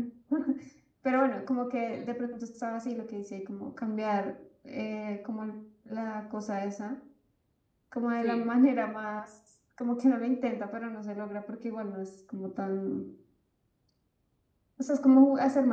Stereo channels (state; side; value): identical; both; correlation 1.00